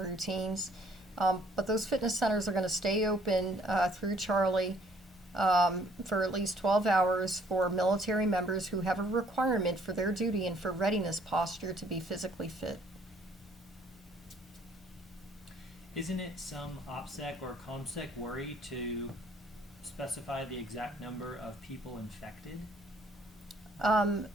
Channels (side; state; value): both; normal; correlation 0.62